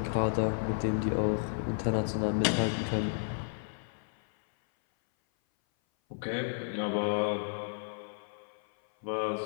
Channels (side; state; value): right; silent; 56 dB below the other